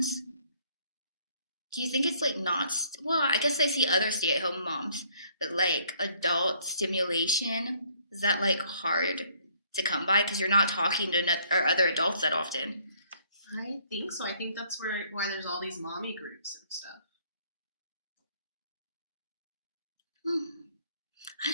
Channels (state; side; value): inverted; both; correlation -0.63